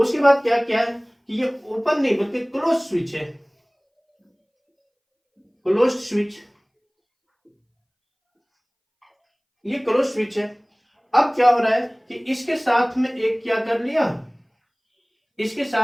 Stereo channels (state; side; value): identical; both; correlation 1.00